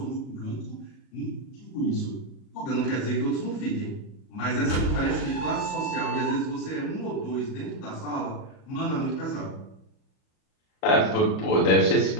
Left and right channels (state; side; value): late; right; 38 ms